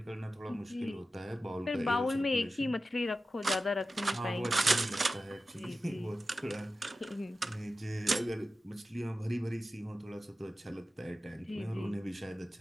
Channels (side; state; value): both; normal; correlation 0.94